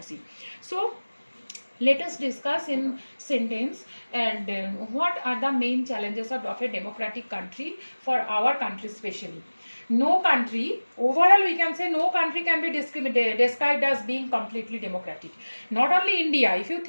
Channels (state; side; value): inverted; both; correlation -1.00